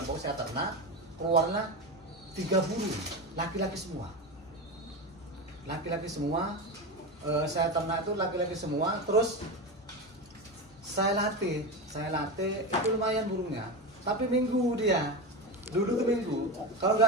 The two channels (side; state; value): both; normal; correlation 0.20